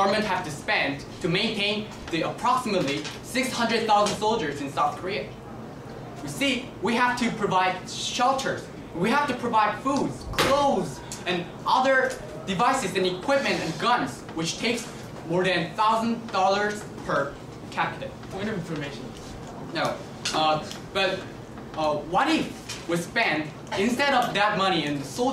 have to spend to maintain the approximately 600,000 soldiers in South Korea? You see, we have to provide shelters, we have to provide foods, clothes, and other devices and equipment and guns, which takes more than $1,000 per capita. Point of information. No, but what if we spend, instead of that money in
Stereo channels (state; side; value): identical; both; correlation 1.00